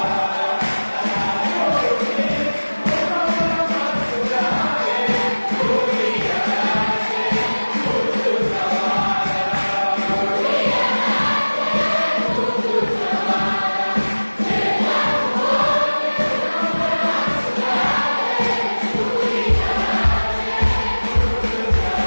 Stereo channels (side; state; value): both; inverted; correlation -1.00